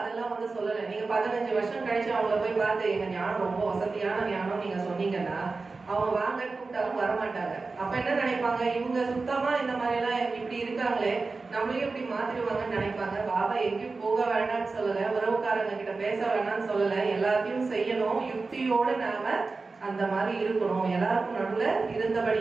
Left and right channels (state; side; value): quieter; left; 4.0 dB